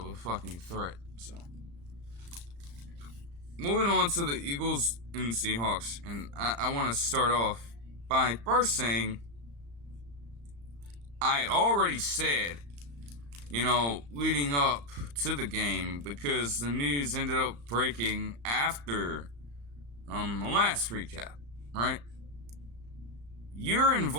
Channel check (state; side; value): late; left; 35 ms